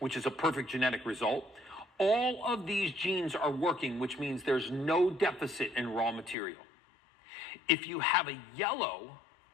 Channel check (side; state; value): right; drops out; at 6.4 s